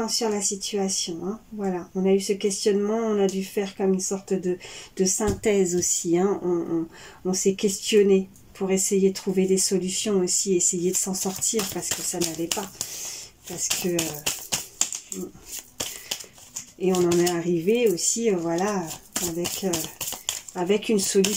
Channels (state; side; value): identical; both; correlation 1.00